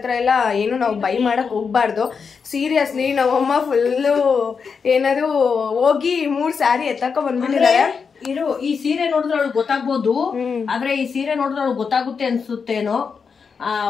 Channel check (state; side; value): quieter; right; 5.7 dB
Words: ಎಲ್ಲ ಏನು ನಾವು ಬೈ ಮಾಡಕ್ ಹೋಗ್ಬಾರ್ದು. ಸೀರಿಯಸ್ಲಿ ನಮ್ಮಮ್ಮ ಫುಲ್ಲು ಏನದು ಹೋಗಿ 3 ಸ್ಯಾರಿ ಎತ್ತಕ ಬಂದ್ಬಿಟ್ಟಿದ್ದಾರೆ. ಈ ಸೀರೆ ನೋಡಿದ್ರೆ ಅವಳು ಗೊತ್ತಾಗ್ಬೋದು, ಆದ್ರೆ ಈ ಸೀರೆ ನೋಡಿದ್ರೆ ಅವಳು ಗೊತ್ತಾಗುತ್ತೆ ಅನ್ಸುತ್ತೇನೋ.